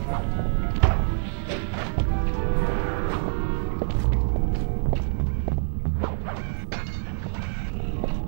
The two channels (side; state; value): left; silent; 61 dB below the other